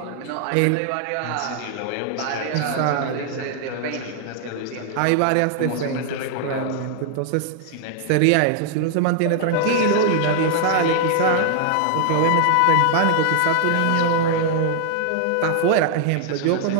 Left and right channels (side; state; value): both; different; correlation 0.00